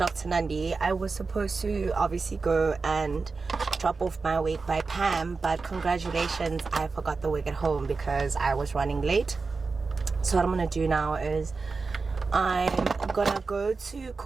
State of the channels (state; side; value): quieter; left; 4.3 dB